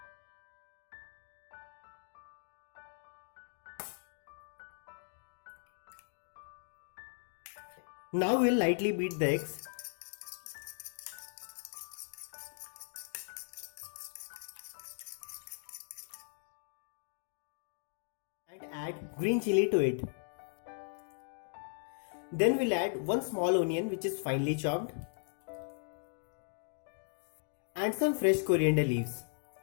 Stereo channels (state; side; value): silent; right; digital silence